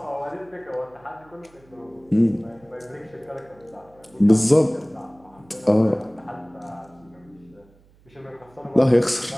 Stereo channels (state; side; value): noise; right; hum, 29 dB below the sound